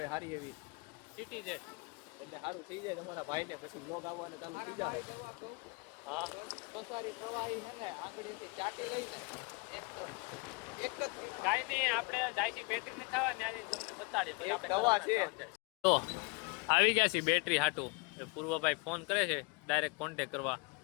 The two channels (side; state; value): right; quieter; 29.4 dB